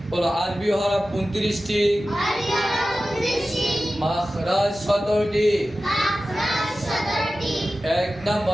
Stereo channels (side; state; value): both; normal; correlation 0.95